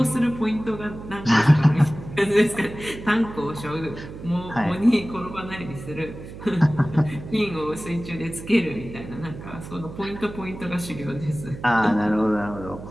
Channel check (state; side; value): noise; right; hum, 13 dB below the sound